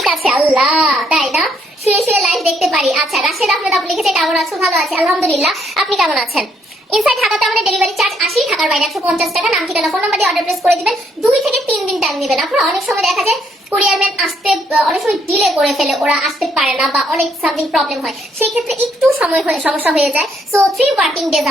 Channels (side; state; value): both; normal; correlation 0.71